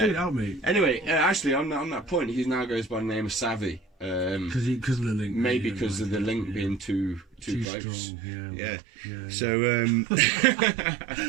it out, mate. Anyway, actually, on that point, he now goes by the name of Savvy. Because of the link. Maybe because of the link being too close. Strong, yeah.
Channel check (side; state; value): left; drops out; at 7.7 s